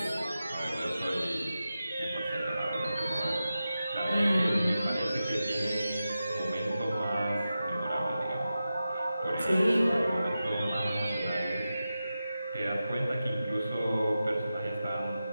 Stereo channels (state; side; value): inverted; both; correlation -0.92